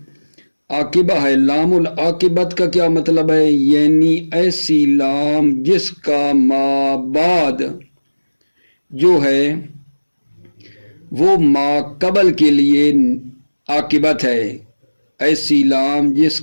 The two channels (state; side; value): inverted; both; correlation -1.00